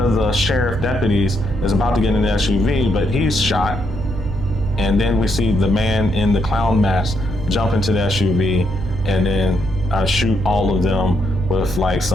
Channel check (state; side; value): noise; right; hum, 9 dB below the sound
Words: the sheriff deputies is about to get in the SUV, but he's shot. And then we see the man in the clown mask jump into the SUV and then shoot all of them with like